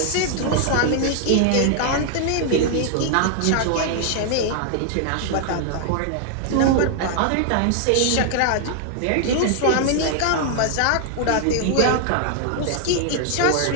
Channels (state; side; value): different; both; correlation 0.00